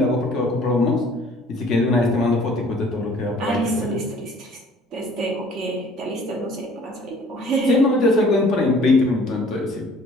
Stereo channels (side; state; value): both; normal; correlation 0.54